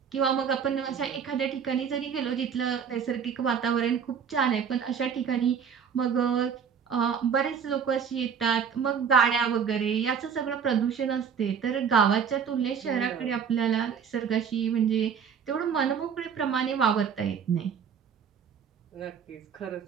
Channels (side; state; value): left; quieter; 7.2 dB